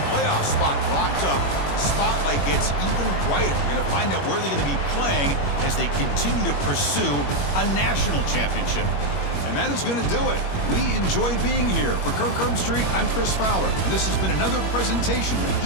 playoff spot locked up, the spotlight gets even brighter. We're going to find out where they're going to be playing as they continue to pursue a national championship. And that is going to do it. We enjoyed being here. For Kirk Herbstreit, I'm Chris Fowler, and this has been another presentation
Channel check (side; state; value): right; late; 21 ms